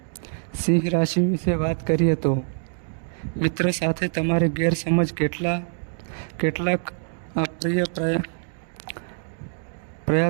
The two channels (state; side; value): silent; left; digital silence